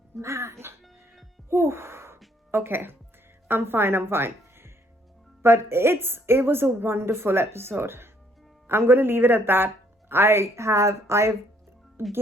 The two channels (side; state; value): both; normal; correlation 0.66